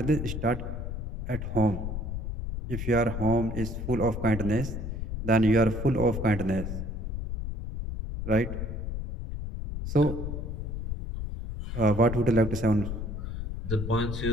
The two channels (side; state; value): left; noise; rumble, 5 dB below the sound